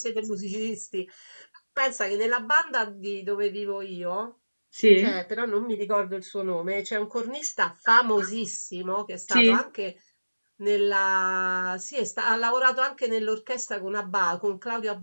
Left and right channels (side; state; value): both; inverted; correlation -1.00